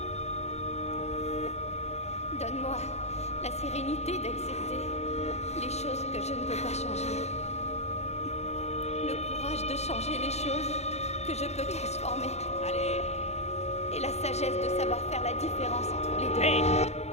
Donne-moi la sérénité d'accepter les choses que je ne peux pas changer. Le courage de changer les choses que je peux transformer. Allez! Et la sagesse de savoir faire la différence entre les deux. Hé!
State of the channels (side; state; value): right; late; 0.31 ms